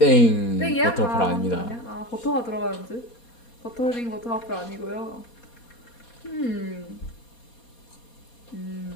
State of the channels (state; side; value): late; right; 4.2 ms